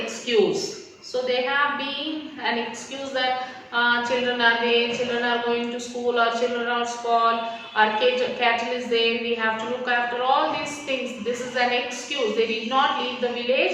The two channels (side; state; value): both; identical; correlation 1.00